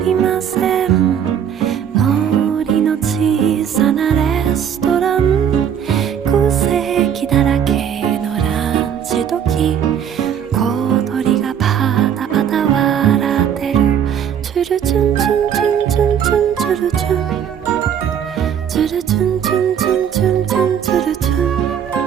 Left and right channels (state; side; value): quieter; left; 8.7 dB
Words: ません森の小さなレストラン空席だらけのランチ時小鳥がパタパタ笑ってるチュルチュンチュンチュンチュンチュンチュルチュンチュルチュンチュンチュンチュンチュンチュルチュン